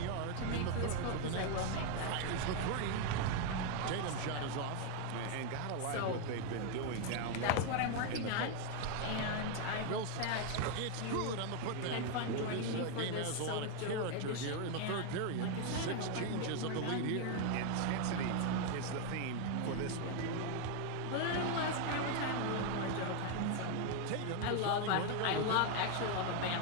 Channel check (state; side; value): different; both; correlation 0.01